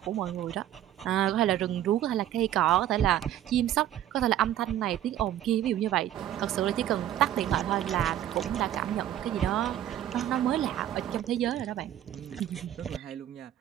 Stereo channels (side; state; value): left; quieter; 11.9 dB